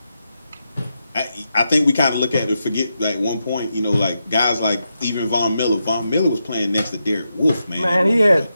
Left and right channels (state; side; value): inverted; both; correlation -0.87